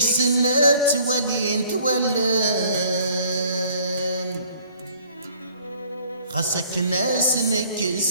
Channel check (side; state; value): both; inverted; correlation -0.57